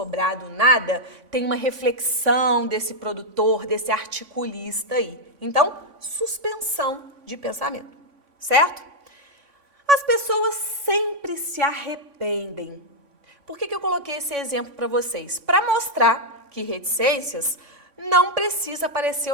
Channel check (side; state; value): left; late; 3.5 ms